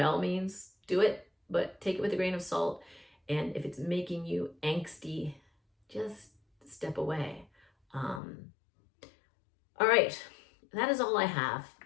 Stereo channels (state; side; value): drops out; right; at 8.2 s